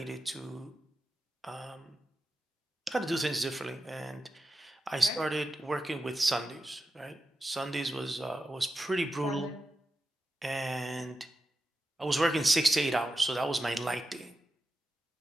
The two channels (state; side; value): normal; both; correlation 0.90